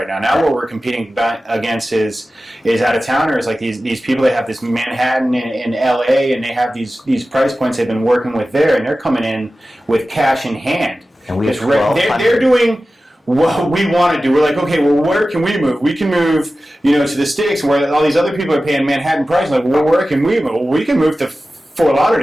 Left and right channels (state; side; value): normal; both; correlation 0.95